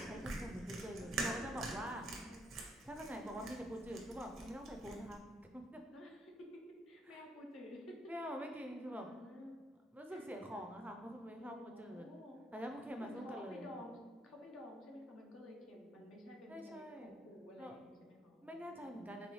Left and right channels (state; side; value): normal; both; correlation 0.72